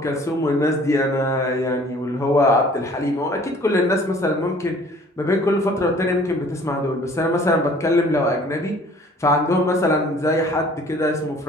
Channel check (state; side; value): normal; both; correlation 0.53